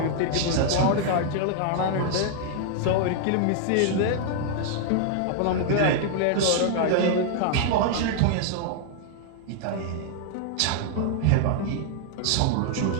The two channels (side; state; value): both; different; correlation 0.00